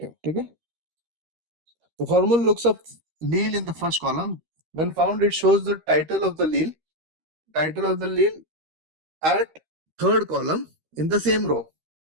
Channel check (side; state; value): left; late; 13 ms